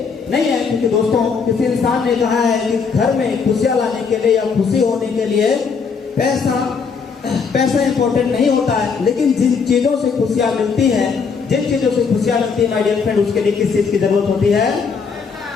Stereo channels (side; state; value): right; quieter; 5.6 dB